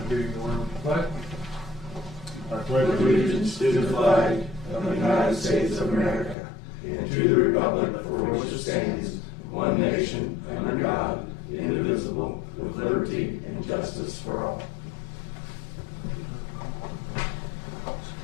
meeting to order. Pledge. I pledge Allegiance to the flag of the United States of America and to the republic for which it stands, one nation, under God, indivisible, with liberty and justice for all.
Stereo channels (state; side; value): drops out; right; at 6.4 s